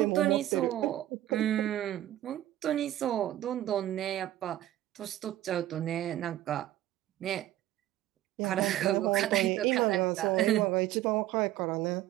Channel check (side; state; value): left; quieter; 13.9 dB